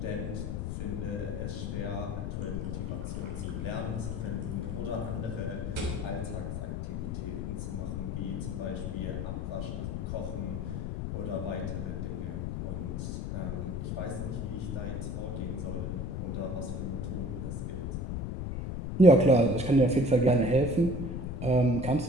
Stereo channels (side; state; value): left; noise; rumble, 3 dB below the sound